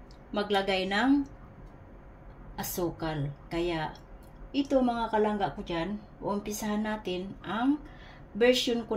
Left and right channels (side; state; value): both; identical; correlation 1.00